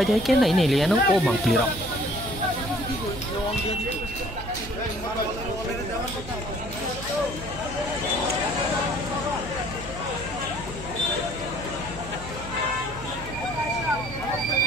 नायनायलायानो ओ मांप्लिराव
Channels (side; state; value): right; noise; hum, 13 dB below the sound